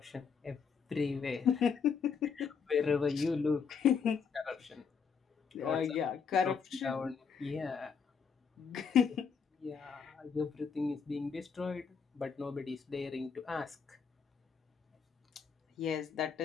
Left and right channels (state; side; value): quieter; right; 6.1 dB